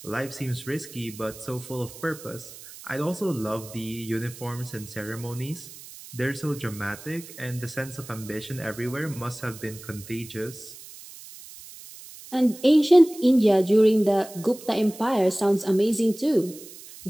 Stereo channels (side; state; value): right; noise; hiss, 16 dB below the sound